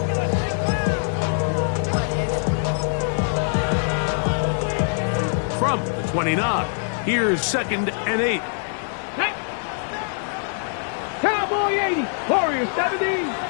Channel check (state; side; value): silent; right; digital silence